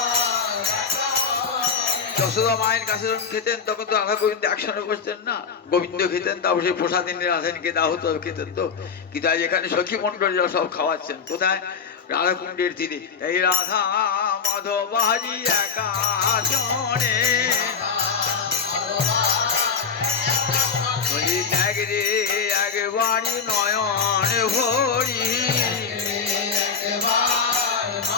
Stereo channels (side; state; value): right; quieter; 5.9 dB